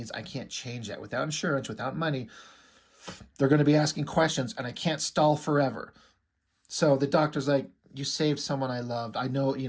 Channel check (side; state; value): both; identical; correlation 1.00